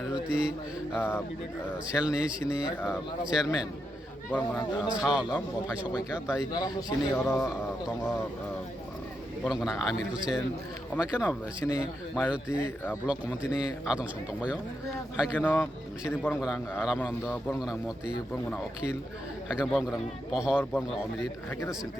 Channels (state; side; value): normal; both; correlation 0.84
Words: सेलनि सिनि चेयारमेन बरंगना सावलम बफाय सबाइका ताई सिनि आरो दङ बरंगना आमिर हुसेन अमायकेनो सिनि माइनरिटी ब्लक कमिटिनि आदं सं दंबायो हायकेनो सिनि बरंगना रामानन्द बरंगना मति बरंगना अखिल हायकेनो बरंगना पहर बरंगना अमृत हायकेनो